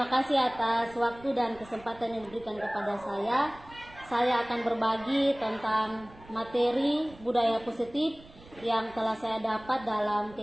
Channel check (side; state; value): right; noise; rumble, 22 dB below the sound